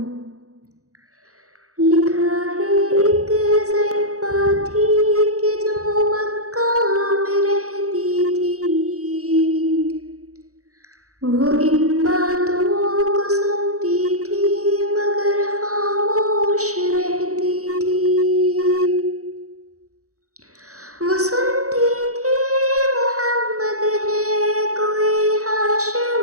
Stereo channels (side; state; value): left; late; 0.65 ms